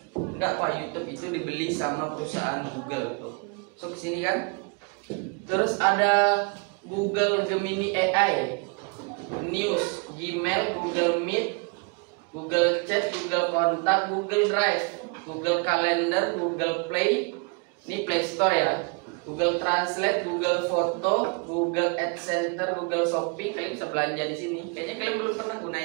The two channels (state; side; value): quieter; left; 33.0 dB